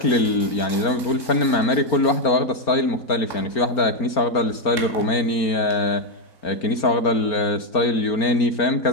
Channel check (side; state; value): right; late; 4.4 ms